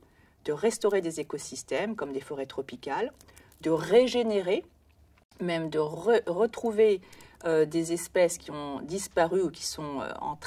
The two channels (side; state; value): both; identical; correlation 1.00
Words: de restaurer des écosystèmes comme des forêts tropicales, de régénérer, même de retrouver des espèces qui ont disparu ou qui sont en